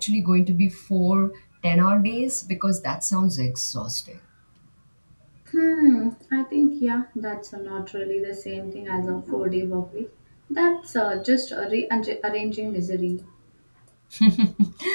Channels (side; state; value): both; inverted; correlation -1.00